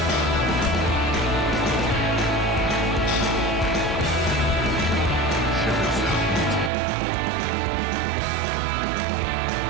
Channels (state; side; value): drops out; left; at 6.7 s